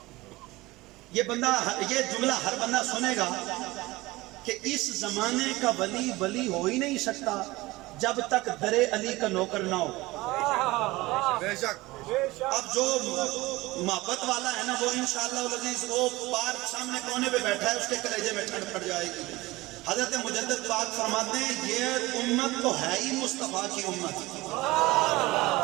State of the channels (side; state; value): left; quieter; 20.1 dB